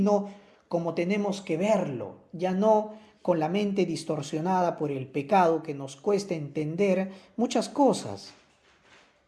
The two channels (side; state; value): both; identical; correlation 1.00